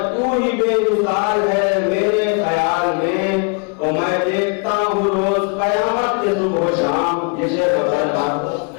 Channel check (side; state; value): right; quieter; 36.3 dB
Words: तू ही बेमिसाल है मेरे ख्याल में। तो मैं देखता हूँ रोज कयामत के सुबह शाम, ये शेर बताया